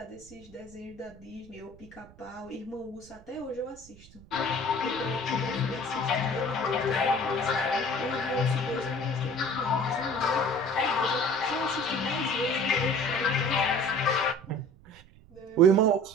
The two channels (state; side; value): noise; right; rumble, 23 dB below the sound